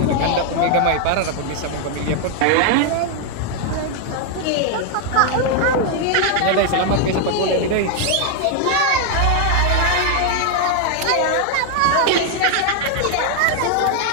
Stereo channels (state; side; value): different; both; correlation 0.00